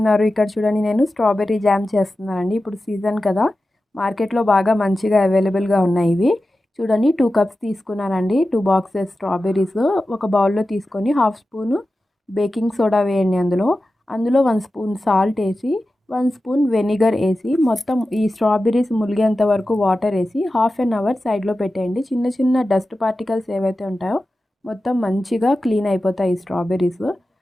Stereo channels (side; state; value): both; normal; correlation 0.93